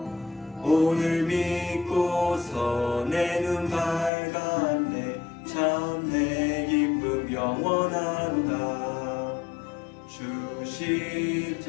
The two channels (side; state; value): right; drops out; at 4.1 s